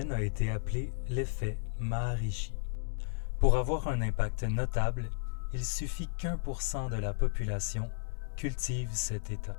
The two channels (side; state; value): right; silent; 55 dB below the other